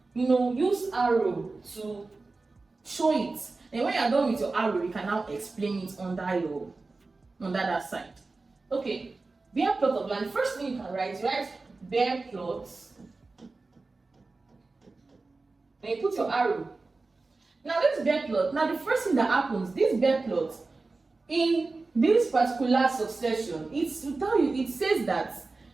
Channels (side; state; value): left; quieter; 3.6 dB